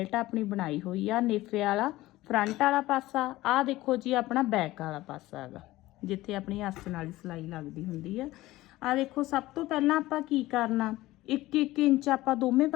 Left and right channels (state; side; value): quieter; right; 17.5 dB